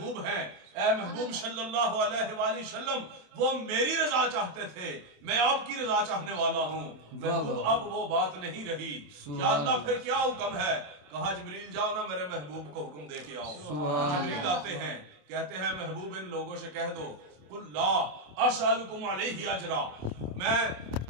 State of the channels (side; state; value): left; late; 27 ms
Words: ہیں، اے محبوب صلی اللہ علیہ وآلہ وسلم وہ میری رضا چاہتے تھے، میں آپ کی رضا چاہنے والا ہوں۔ محبوب اب وہ بات نہیں رہی، یا اللہ پھر کیا حکم ہے؟ کہا جبریل جاؤ نا میرے محبوب کو حکم دے کے آؤ۔ جبریل آتے ہیں، کہتے ہیں محبوب ان لوگوں سے کہہ دو قل لا اسألکم علیہ اجرا، میں